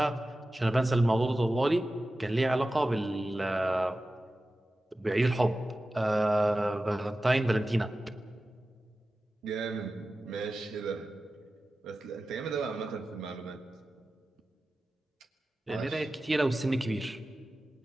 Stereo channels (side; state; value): both; normal; correlation 0.94